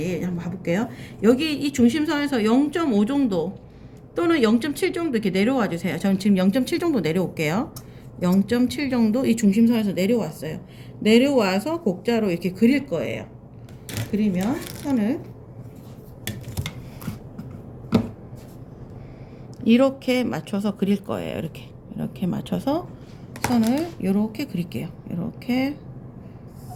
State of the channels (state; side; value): identical; both; correlation 1.00